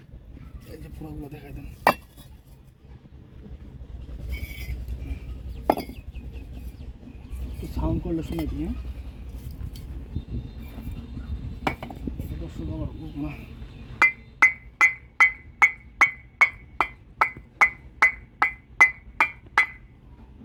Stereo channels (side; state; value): both; identical; correlation 1.00